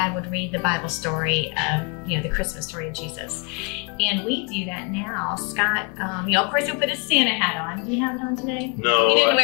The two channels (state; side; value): quieter; right; 34.5 dB